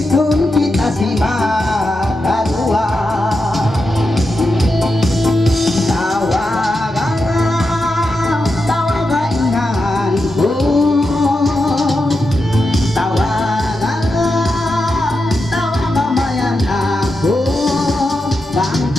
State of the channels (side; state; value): both; normal; correlation 0.88